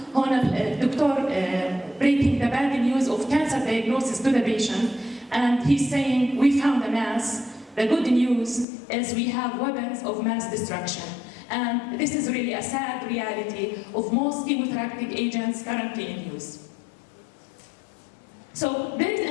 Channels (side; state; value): right; drops out; at 8.7 s